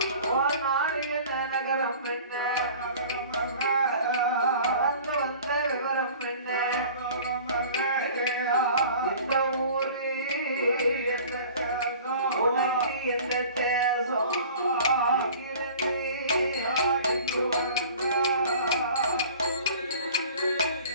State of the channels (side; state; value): both; inverted; correlation -0.45